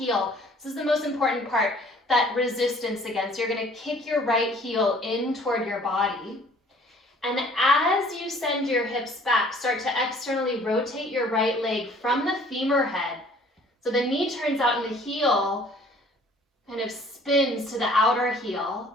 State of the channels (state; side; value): normal; both; correlation 0.55